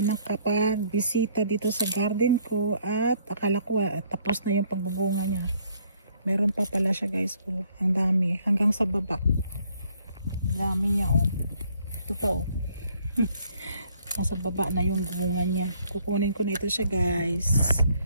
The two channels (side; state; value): both; inverted; correlation -0.65